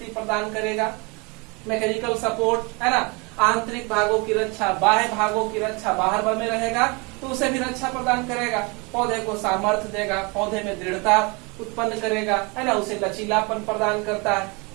प्रदान करेगा, मैकेनिकल सपोर्ट, है ना। आंतरिक भागों की रक्षा, बाह्य भागों की रक्षा, बाहर में रहेगा तो उसे भी रक्षा प्रदान करेगा। पौधे को सामर्थ्य देगा, पौधे में दृढ़ता उत्पन्न करेगा, है ना, उसे लचीलापन प्रदान करता है।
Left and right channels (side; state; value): left; quieter; 29.2 dB